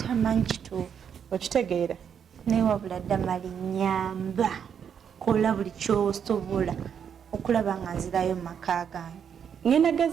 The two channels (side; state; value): left; quieter; 7.8 dB